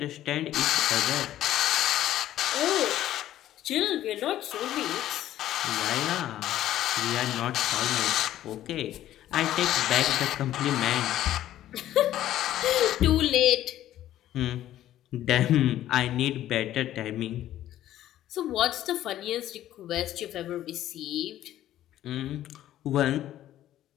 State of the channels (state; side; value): quieter; right; 12.9 dB